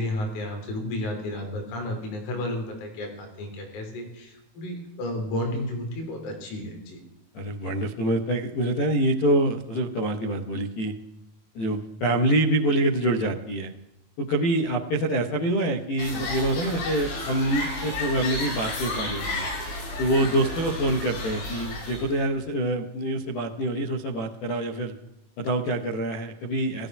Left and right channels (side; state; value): right; late; 18 ms